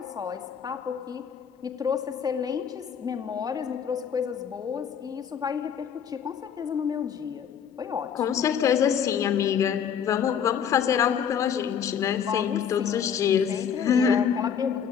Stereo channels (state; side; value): quieter; right; 7.8 dB